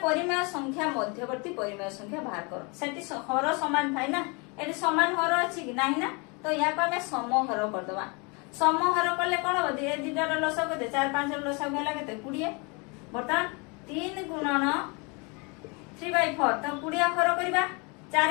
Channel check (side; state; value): right; quieter; 30.6 dB